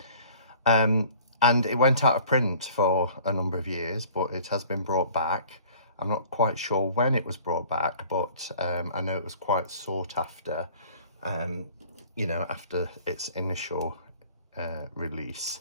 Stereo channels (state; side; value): inverted; both; correlation -0.50